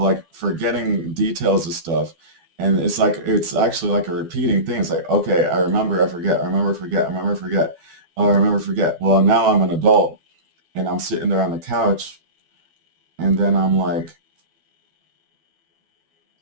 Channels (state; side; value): late; left; 12 ms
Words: forgetting details of stuff, and it's actually like a repeating thing. It's like, okay, I remember, I forget, I remember, forget, I remember, forget, oh, I remember, forget. Well, now I'm an adult and I'm sitting there on the couch, and then I'm like,